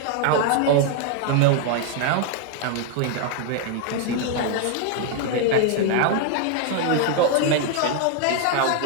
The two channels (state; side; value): different; both; correlation 0.00